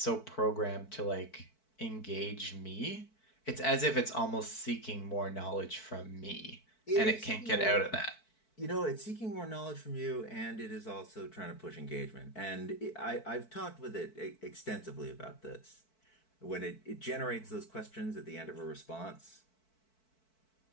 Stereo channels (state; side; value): late; right; 4.6 ms